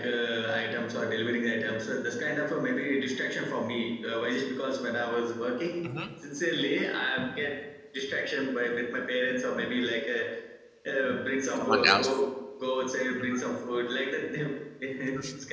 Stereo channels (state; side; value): identical; both; correlation 1.00